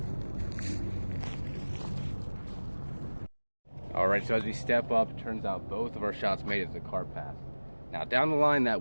All right, so as we step up, it turns out both of our shots made it as a cart pass. Now down the line, that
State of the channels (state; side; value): inverted; both; correlation -1.00